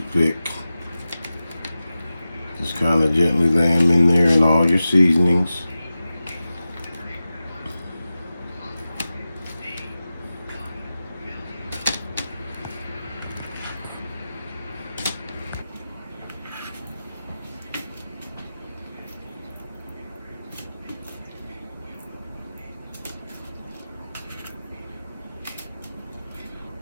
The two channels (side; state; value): both; inverted; correlation -0.94